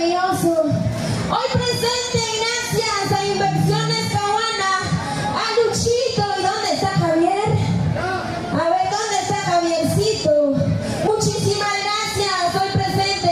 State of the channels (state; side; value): identical; both; correlation 1.00